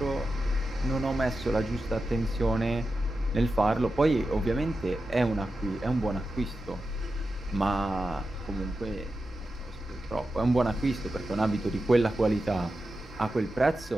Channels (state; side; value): normal; both; correlation 0.91